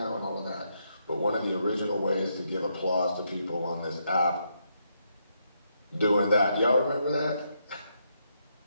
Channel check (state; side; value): inverted; both; correlation -0.79